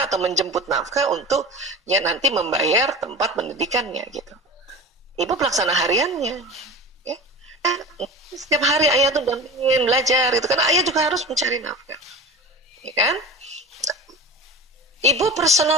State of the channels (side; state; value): both; normal; correlation 0.31